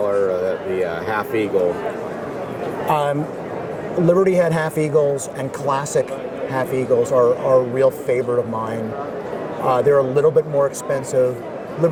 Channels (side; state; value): both; identical; correlation 1.00